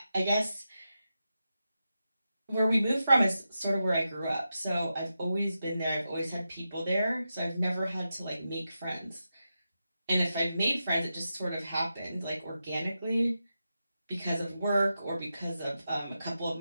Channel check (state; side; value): inverted; both; correlation -0.89